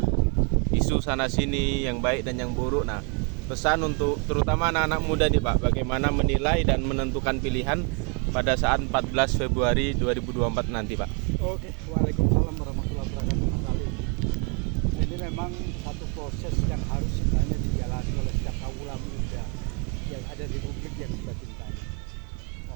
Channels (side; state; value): left; quieter; 34.5 dB